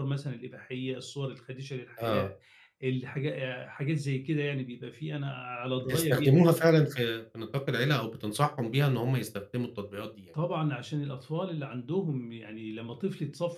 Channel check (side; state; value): both; identical; correlation 1.00